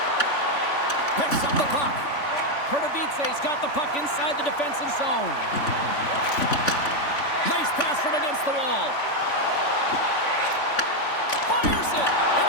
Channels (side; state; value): right; late; 3.5 ms